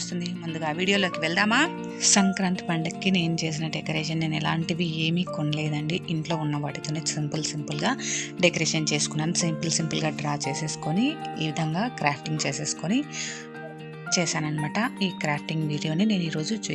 వస్తుంది. ముందుగా వీడియోలోకి వెళ్దామా? సంక్రాంతి పండుగకి నేను చేసిన డెకరేషన్ నేను ఎలాంటివి ఏమీ కొనలేదండి. ఇంట్లో ఉన్న వాటితోనే సింపుల్గా డెకరేషన్ చేసుకున్నాను. సింపుల్గా డ్రా చేసేసుకొని ఈ విధంగా క్రాఫ్టింగ్ చేసేసుకొని చేశానన్నమాట. ఈ క్రాఫ్టింగ్ వీడియోని నేను ఈరోజు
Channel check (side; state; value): both; identical; correlation 1.00